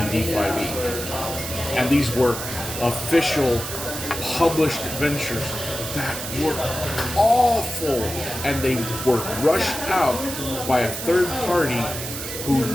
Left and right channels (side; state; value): right; noise; hiss, 7 dB below the sound